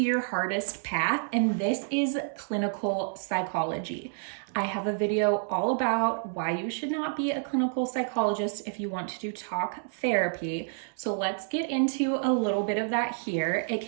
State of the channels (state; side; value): silent; left; digital silence